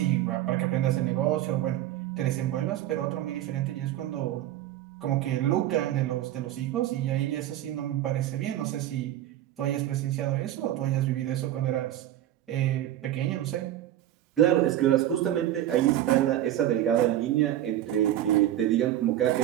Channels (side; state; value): left; quieter; 12.9 dB